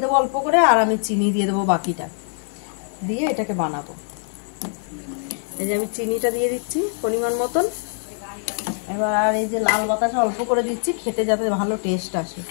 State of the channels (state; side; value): silent; right; digital silence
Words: দেবো অল্প করে, আর আমি চিনি দিয়ে দেবো বাকিটা, দিয়ে এটাকে বানাবো। এই যে আমি চিনিটা দিয়ে দিচ্ছি পরিমাণ মতন। এবার আর এই যে লাল বাতাসা অল্প করে দিচ্ছি, খেতে যাতে ভালো টেস্ট আসে,